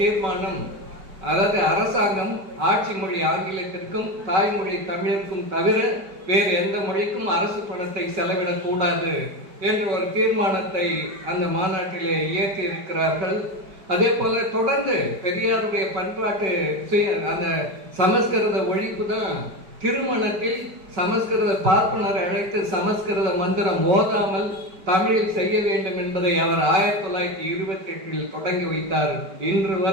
அதாவது அரசாங்கம் ஆட்சி மொழி ஆங்கிலத்திற்கும் தாய்மொழி தமிழுக்கும் தவிர வேறு எந்த மொழிக்கும் அரசு பணத்தை செலவிடக்கூடாது என்ற ஒரு தீர்மானத்தை அந்த மாநாட்டிலே இயற்றி இருக்கிறார்கள். அதே போல தொடர்ந்து பெரியாருடைய பண்பாட்டு அந்த சமஸ்கிருத ஒழிப்பு தான் திருமணத்தில் சமஸ்கிருத பார்ப்பனரை அழைத்து சமஸ்கிருத மந்திரம் ஓதாமல் தமிழில் செய்ய வேண்டும் என்பதை அவர் 1928 தொடங்கி வைத்தார். இன்று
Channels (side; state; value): left; late; 5.3 ms